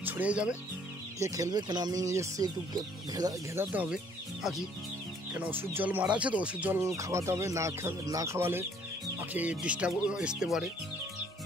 ছড়িয়ে যাবে, কে খেলবে। কেন আমি এসছি একটু ঘেরাতে হবে পাখি, কেন ওষুধ জল মারা আছে তো, ওষুধ জল খাওয়াতে হবে। না খাওয়ালে পাখি ডিস্টার্ব আসতে পারে।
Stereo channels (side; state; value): both; normal; correlation 0.61